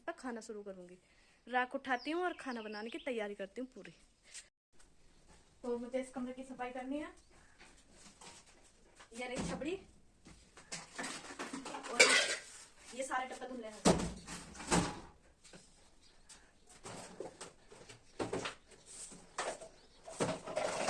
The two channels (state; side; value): identical; both; correlation 1.00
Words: पर खाना शुरू करूँगी। राख उठाती हूँ और खाना बनाने की तैयारी करती हूँ पूरी। तो मुझे इस कमरे की सफाई करनी है। ये रही छबड़ी, और ये सारे डब्बे धुलने हैं।